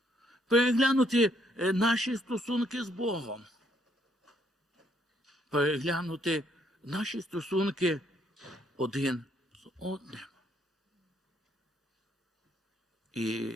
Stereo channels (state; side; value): normal; both; correlation 0.70